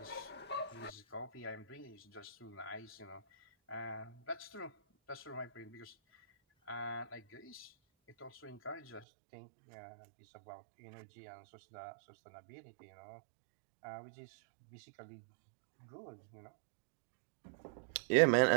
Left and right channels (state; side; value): drops out; left; at 9.1 s